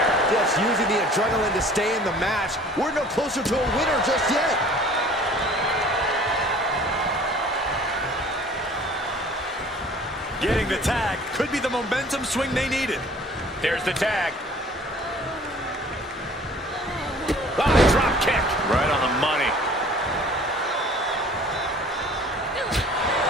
Just using the adrenaline to stay in the match. We're no closer to a winner just yet. Getting the tag could be the momentum swing they needed. There's the tag. Ah, drop kick. Right on the money.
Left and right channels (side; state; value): both; normal; correlation 0.50